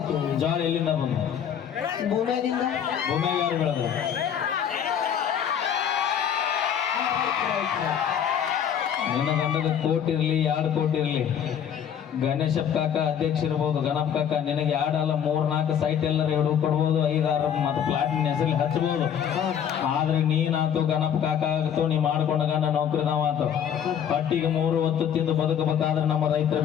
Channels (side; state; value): right; quieter; 8.7 dB